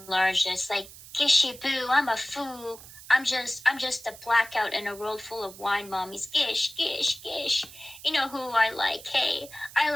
this, like, Gishy boo, I'm a fool. I'm just a blackout in a world full of wine mommies. Gish, gish, gish. You know who I like, K. I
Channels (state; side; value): noise; right; hiss, 17 dB below the sound